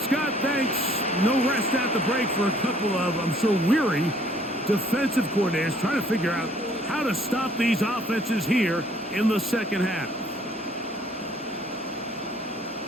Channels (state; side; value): normal; both; correlation 0.60